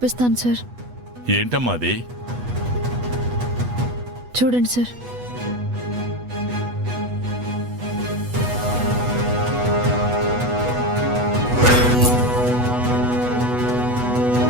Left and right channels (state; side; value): late; left; 8.2 ms